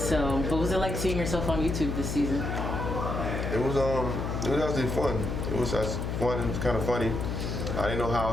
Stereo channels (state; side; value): noise; left; hum, 2 dB below the sound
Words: what was it like seeing yourself on YouTube this season? It was actually fun. It was just fun. It was kind of funny. I didn't know how I